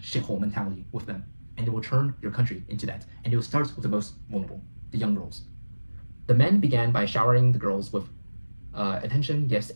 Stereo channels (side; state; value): both; inverted; correlation -1.00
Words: shithole mentality with them, and they will turn your country into that, and it will start with the most vulnerable, the young girls. The men began by showering the girls with attention, gifts,